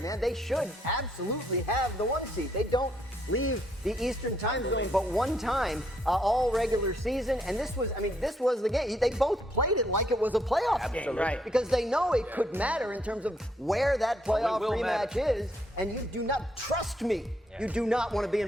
They should absolutely have the 1 seed. They don't leave the Eastern time zone but one time all regular season, and this was the game. They both played it like it was a playoff game, right? Because they know it could matter in terms of where that playoff rematch is, and you do not trust me. You do not want to be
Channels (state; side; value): normal; both; correlation 0.72